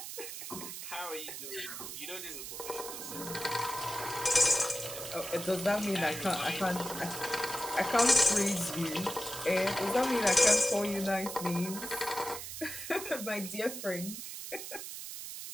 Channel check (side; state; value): right; noise; hiss, 8 dB below the sound